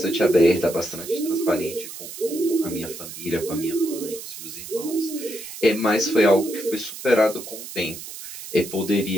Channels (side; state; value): right; noise; hiss, 11 dB below the sound